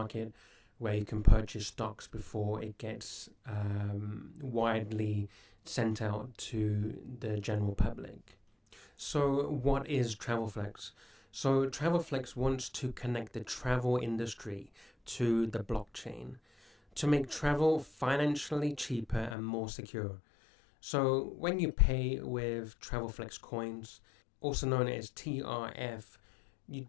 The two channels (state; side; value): drops out; right; at 19.4 s